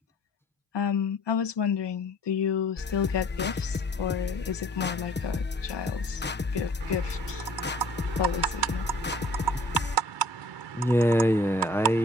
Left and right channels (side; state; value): both; normal; correlation 0.53